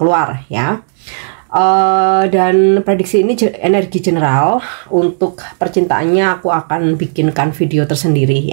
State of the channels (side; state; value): left; silent; digital silence